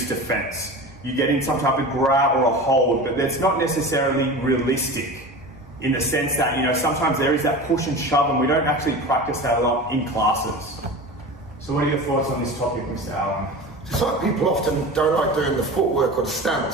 defense. You get in some type of grab or a hold, but that's not necessarily realistic in the sense that, sometimes there is that push and shove and we don't actually practice that a lot in classes. So what are your thoughts on this topic, Mr. Allen? It's like people often don't like doing the footwork or the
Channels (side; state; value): both; normal; correlation 0.32